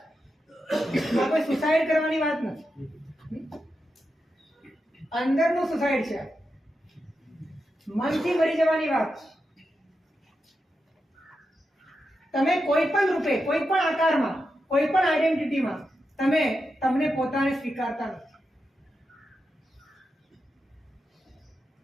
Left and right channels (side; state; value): both; normal; correlation 0.88